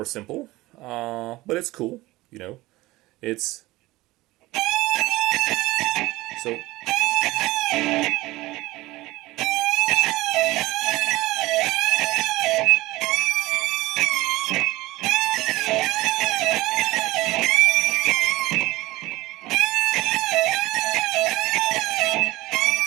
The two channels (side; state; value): left; quieter; 19.2 dB